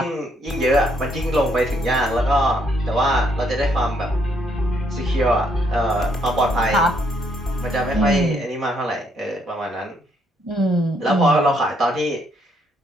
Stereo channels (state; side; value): normal; both; correlation 0.71